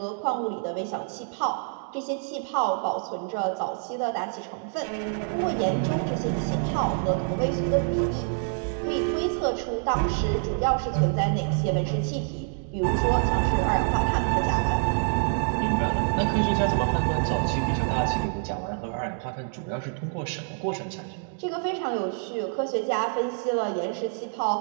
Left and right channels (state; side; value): silent; left; 58 dB below the other